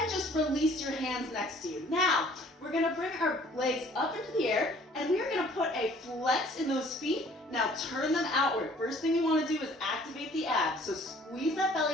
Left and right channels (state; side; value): normal; both; correlation 0.55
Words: just release your hands next to you. Now, we're going to bring our legs up into the air, and we are going to put a flex in those feet. Now turn them outward. First thing you want to do is activate the abs. So squeeze that